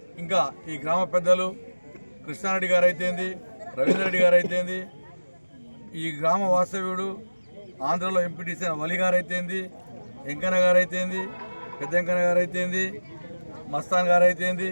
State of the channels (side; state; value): both; inverted; correlation -1.00